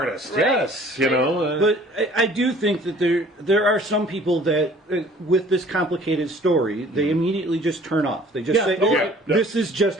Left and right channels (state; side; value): normal; both; correlation 0.52